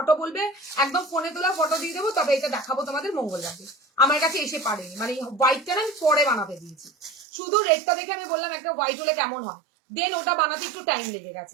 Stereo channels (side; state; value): left; drops out; at 7.2 s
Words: বলবে, একদম ফোনে তোলা ফটো দিয়ে দেবো। তবে এটা দেখাবো তোমাদের মঙ্গলবারে, আমার কাছে এসে পারেনি, মানে হোয়াইটটা না আমি পরে বানাতে দিয়েছি। শুধু রেডটা দেখে আমি বললাম একটা হোয়াইট হলে কেমন হয়, দেন ওটা বানাতে একটু টাইম লেগে